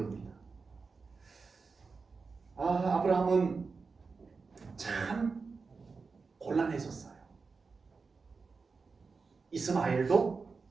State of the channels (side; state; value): left; quieter; 4.6 dB